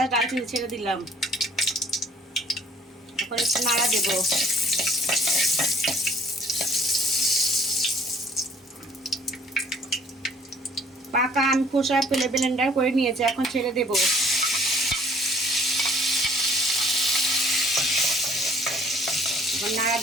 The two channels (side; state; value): both; normal; correlation 0.57